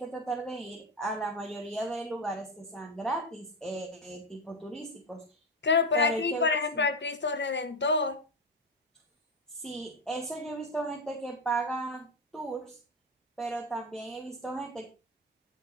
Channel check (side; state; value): both; normal; correlation 0.13